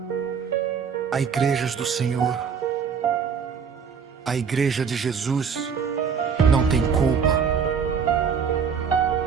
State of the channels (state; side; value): quieter; left; 6.5 dB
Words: à igrejas do Senhor. A igreja de Jesus não tem culpa.